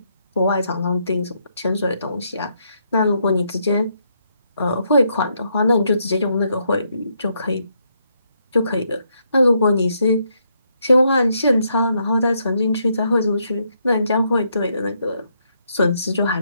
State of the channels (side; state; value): both; inverted; correlation -0.76